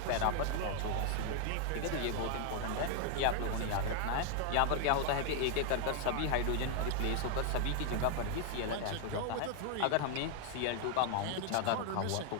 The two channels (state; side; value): different; both; correlation 0.01